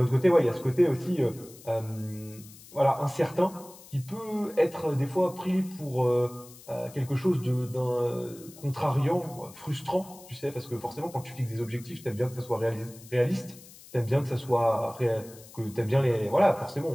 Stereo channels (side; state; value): left; noise; hiss, 20 dB below the sound